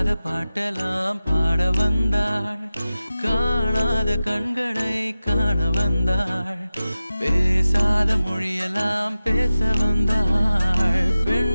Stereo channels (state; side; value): inverted; both; correlation -0.95